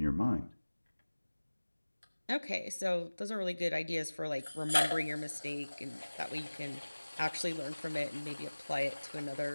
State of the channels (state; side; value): inverted; both; correlation -1.00